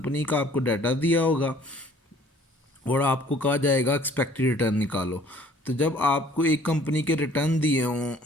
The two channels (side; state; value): both; normal; correlation 0.55